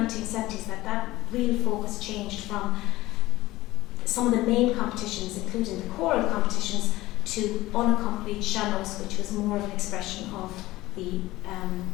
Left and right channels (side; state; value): right; quieter; 17.8 dB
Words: that real focus changed from some of the main competitions, including the choral competitions, to unaccompanied sean-nós, which was more of an expression of the